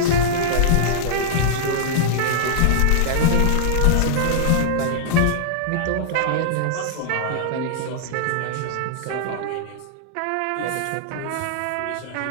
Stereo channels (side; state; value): both; different; correlation -0.02